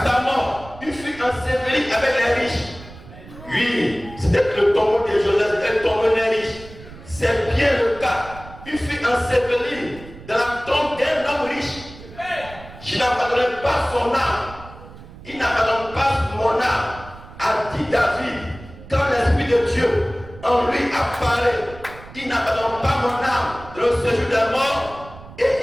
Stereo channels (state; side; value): noise; right; rumble, 18 dB below the sound